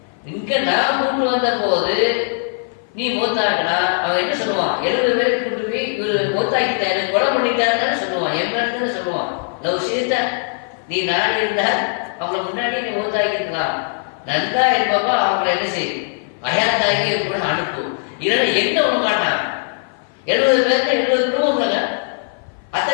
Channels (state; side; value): silent; right; 58 dB below the other